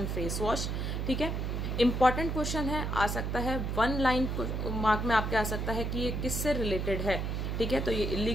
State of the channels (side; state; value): right; noise; hum, 1 dB below the sound